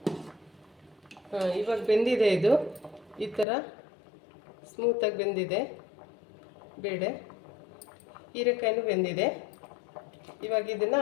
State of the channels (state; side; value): drops out; right; at 3.5 s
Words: ಇವಾಗ ಬೆಂದಿದೆ ಇದು. ಈ ಥರ ಸ್ಮೂತಾಗಿ ಬೆಂದಿದೆ ಬೇಳೆ. ಹೀರೆಕಾಯಿನೂ ಬೆಂದಿದೆ. ಇವಾಗ ಇದನ್ನು